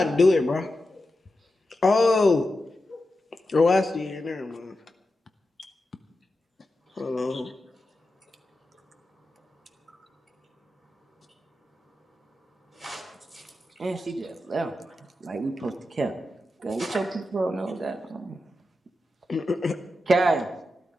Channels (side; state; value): both; normal; correlation 0.90